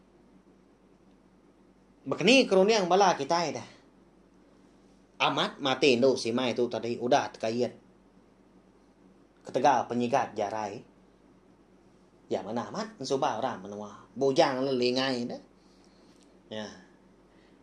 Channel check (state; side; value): identical; both; correlation 1.00